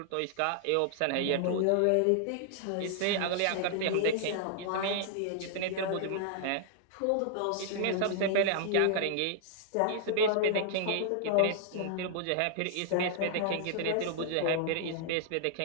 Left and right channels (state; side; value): different; both; correlation -0.01